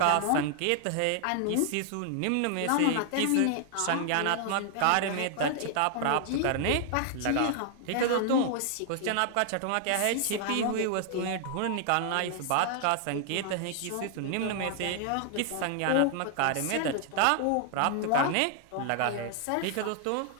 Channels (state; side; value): different; both; correlation 0.00